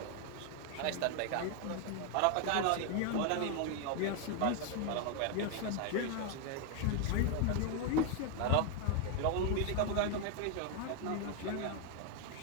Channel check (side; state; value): both; different; correlation 0.01